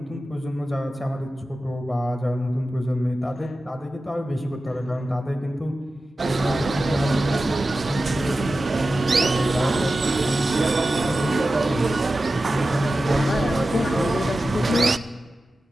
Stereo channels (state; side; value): normal; both; correlation 0.94